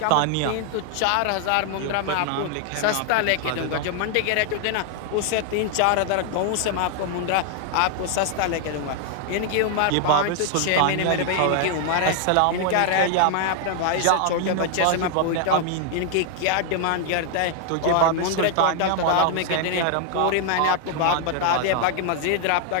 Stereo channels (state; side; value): different; both; correlation 0.00